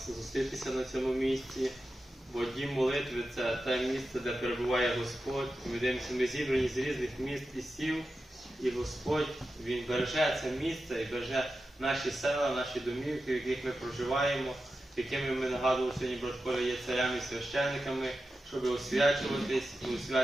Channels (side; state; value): both; normal; correlation 0.91